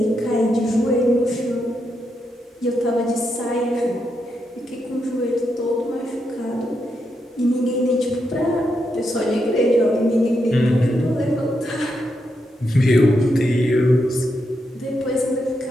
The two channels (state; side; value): normal; both; correlation 0.83